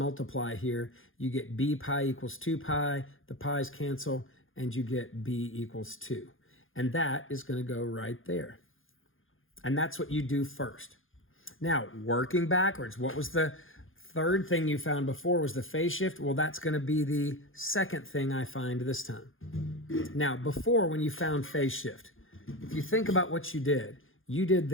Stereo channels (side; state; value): right; late; 0.59 ms